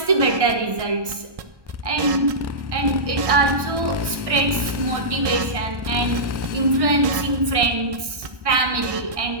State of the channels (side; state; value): left; late; 1.6 ms